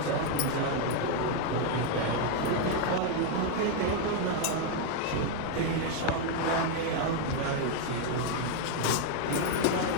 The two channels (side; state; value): both; different; correlation 0.00